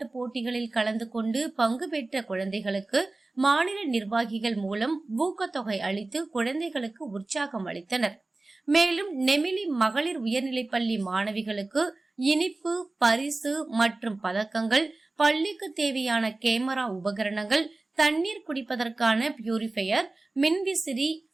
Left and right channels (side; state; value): left; quieter; 3.1 dB